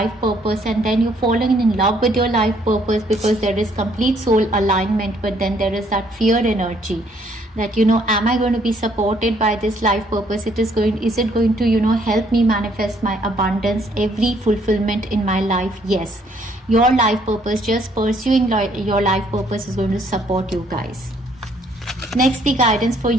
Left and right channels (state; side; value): normal; both; correlation 0.66